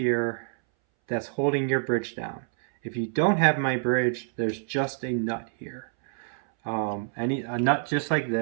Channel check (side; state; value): left; silent; 60 dB below the other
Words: that's holding your bridge down. If you don't have my bridge, there's just a nut here. A nut just like